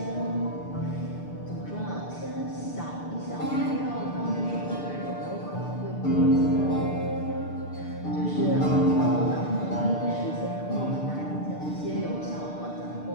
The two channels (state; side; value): late; right; 6.7 ms